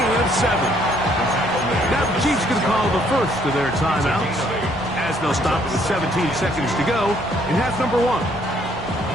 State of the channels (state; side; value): normal; both; correlation 0.66